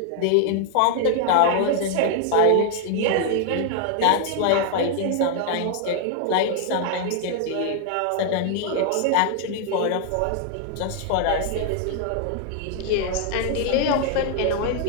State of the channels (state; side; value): different; both; correlation 0.00